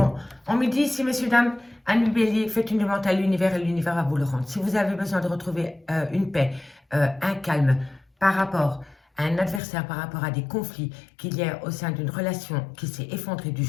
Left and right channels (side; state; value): right; drops out; at 9.6 s